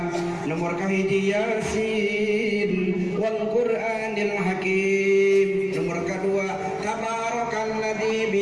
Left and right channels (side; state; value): both; identical; correlation 1.00